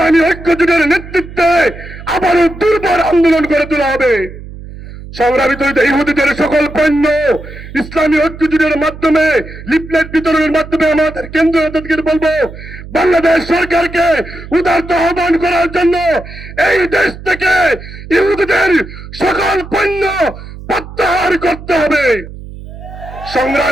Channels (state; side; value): noise; right; hum, 14 dB below the sound